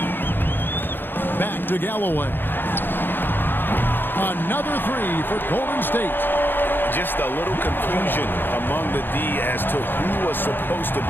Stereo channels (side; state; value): right; late; 0.097 ms